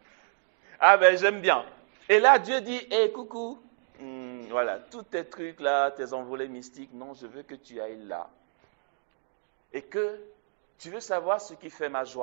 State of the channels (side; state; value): left; silent; digital silence